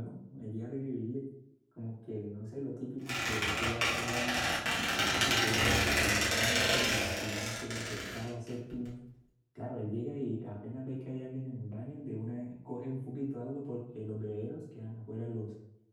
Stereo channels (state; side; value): identical; both; correlation 1.00